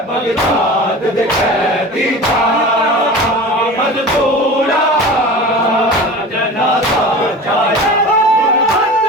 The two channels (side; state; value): both; normal; correlation 0.35